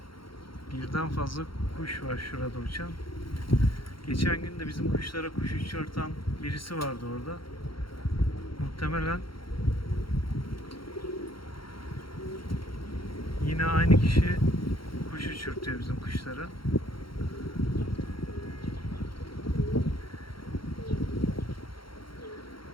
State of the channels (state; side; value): late; right; 0.73 ms